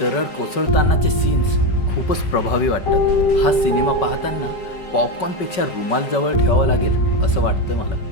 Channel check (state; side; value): late; right; 5.3 ms